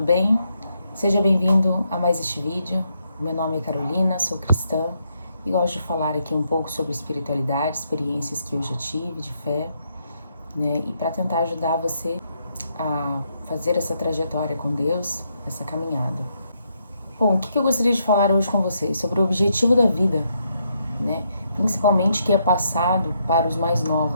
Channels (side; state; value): both; inverted; correlation -0.77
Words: bem? Seja bem-vindo a mais este vídeo. Meu nome é Carolina, sou cristã e gosto de falar aqui um pouco sobre espiritualidade, experiências que eu já tive de fé, né? E para tentar ajudar você a fazer essa trajetória com Deus, essa caminhada. Bom, o que eu gostaria de falar hoje com vocês? Sobre o objetivo da vida, né? Principalmente que é passado para os mais